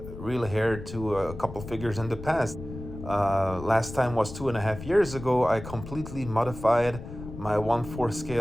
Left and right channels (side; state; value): left; noise; rumble, 12 dB below the sound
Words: real hair to a couple figures in the past. Last time was 2.5 years ago. I completely modified my 1/4